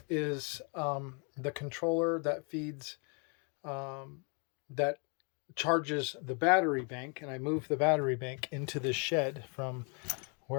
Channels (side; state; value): right; quieter; 36.7 dB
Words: is the controller that feeds, that charges the battery bank. And I moved the battery bank into this shed from